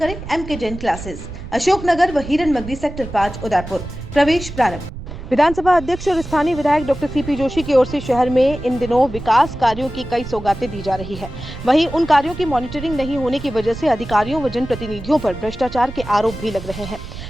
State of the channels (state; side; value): noise; right; rumble, 11 dB below the sound